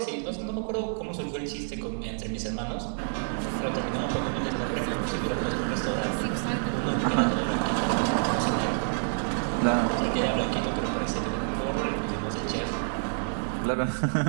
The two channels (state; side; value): silent; left; 59 dB below the other